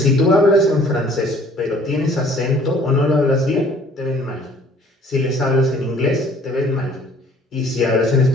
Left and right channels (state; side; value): normal; both; correlation 0.55